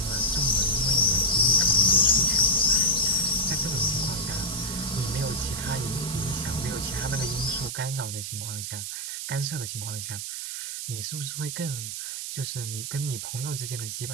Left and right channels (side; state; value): right; noise; hiss, 5 dB below the sound